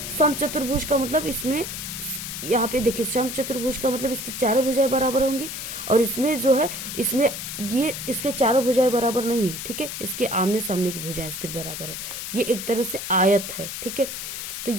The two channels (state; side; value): noise; left; hiss, 7 dB below the sound